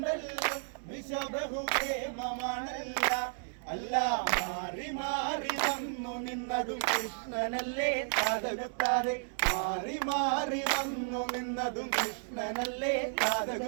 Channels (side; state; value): left; silent; digital silence